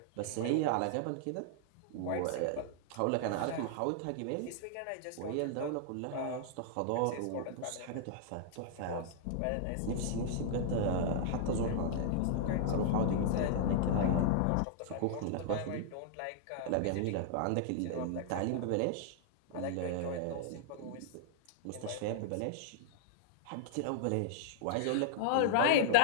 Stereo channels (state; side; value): different; both; correlation -0.01